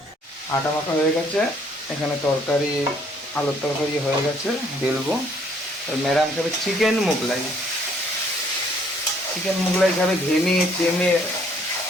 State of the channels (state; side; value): normal; both; correlation 0.63